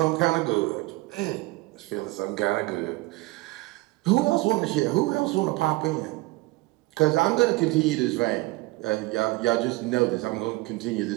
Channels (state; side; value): quieter; left; 21.2 dB